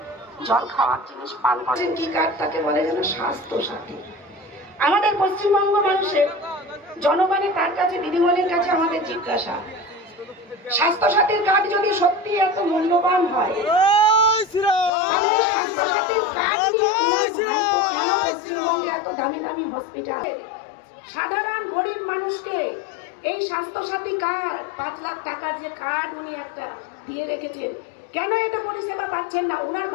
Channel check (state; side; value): drops out; right; at 14.9 s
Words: জল খাওয়ার জিনিস পান করেন কি কার্ড, তাকে বলে যেন স্বাস্থ্য সাথী। আমাদের পশ্চিমবঙ্গ মানুষের জনগণের তার কাছে, দিদিমণির কাছে আমাদের জিজ্ঞাসা, স্বাস্থ্য সাথীর কার্ড যদি সত্যি এত মূল্যবান হয়, তাহলে স্বাস্থ্য সাথীর কার্ড নিয়ে কেন পশ্চিমবঙ্গে এত দামি দামি হসপিটাল? সাধারণ গরিব মানুষকে এই স্বাস্থ্য সাথী কার্ড, 5 লাখ টাকার যে কার্ড উনি একটা দিয়ে রেখেছেন, কেন এটা পরিষেবা পাচ্ছেন না? উনার